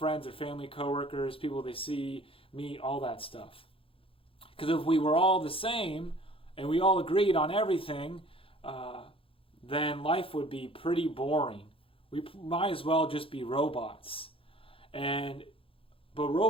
their family, coworkers, people they see, meet, all that stuff. Because if we were all the same and we all agreed on everything, then life would be pretty boring. We might as well just be robots. But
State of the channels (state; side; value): late; right; 0.27 ms